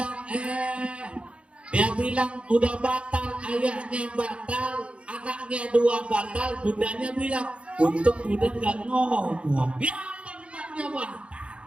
bilang udah batal, ayahnya batal, anaknya dua batal, bundanya bilang untuk bunda nggak ngomong, ya tempatnya batal.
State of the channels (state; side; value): late; left; 0.060 ms